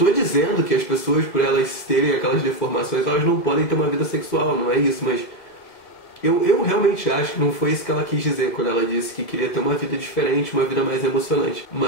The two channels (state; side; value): late; right; 1.9 ms